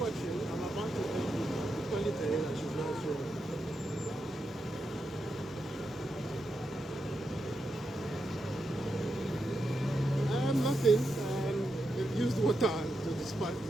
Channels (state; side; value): normal; both; correlation 0.85